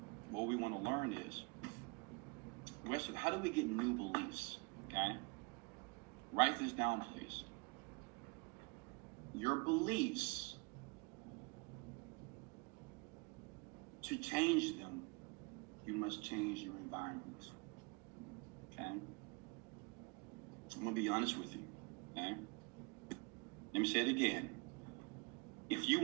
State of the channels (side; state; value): left; quieter; 29.7 dB